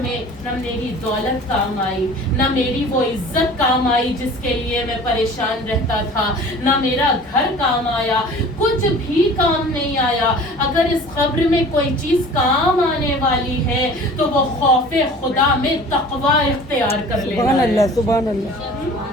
میں نہ میری دولت کام آئی، نہ میری وہ عزت کام آئی جس کے لیے میں پریشان رہتا تھا، نہ میرا گھر کام آیا، کچھ بھی کام نہیں آیا۔ اگر اس قبر میں کوئی چیز کام آنے والی ہے تو وہ خوف خدا میں تقوی اختیار کر لینا ہے۔ سبحان اللہ، سبحان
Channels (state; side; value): normal; both; correlation 0.44